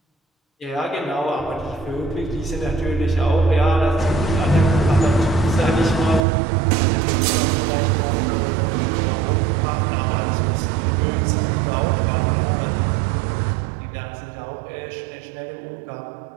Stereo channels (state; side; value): drops out; left; at 6.2 s